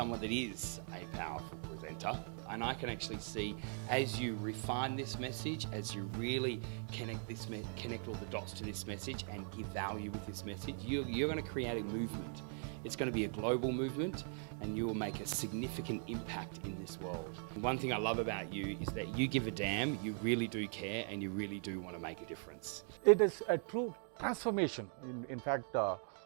that is a powerful presenter. And I can actually see, as you refine this message, as you really connect all the dots to this message and give value with this message, you're going to create a movement. It's going to be a global movement, and you will make a significant impact in this world. One thing I love about you is that you give a damn, you really do care, and you really do want to make a difference. It is a true transformation. In fact,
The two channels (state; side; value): silent; left; 51 dB below the other